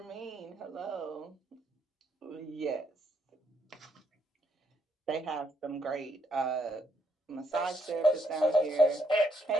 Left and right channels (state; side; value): normal; both; correlation 0.73